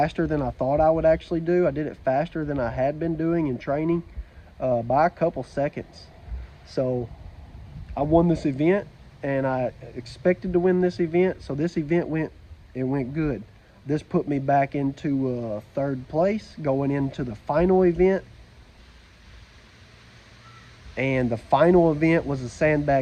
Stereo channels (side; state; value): both; identical; correlation 1.00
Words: than I thought I would actually do. I did it faster than I had been doing in training by a couple seconds. So I won this event, and I expected to win this event. So this event went good. This put me back into 3rd place going into the final event. And the final event was a